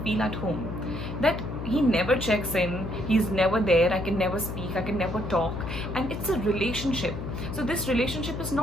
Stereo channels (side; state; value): left; noise; hum, 6 dB below the sound